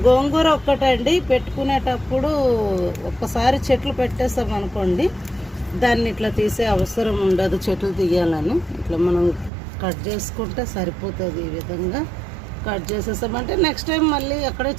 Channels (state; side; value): drops out; left; at 9.5 s